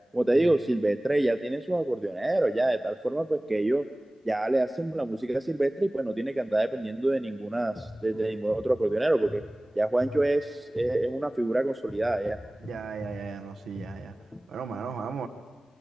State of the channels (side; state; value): both; normal; correlation 0.98